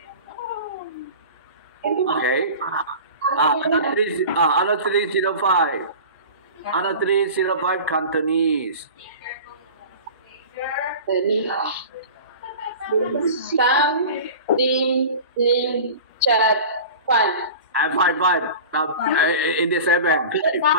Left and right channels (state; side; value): inverted; both; correlation -0.37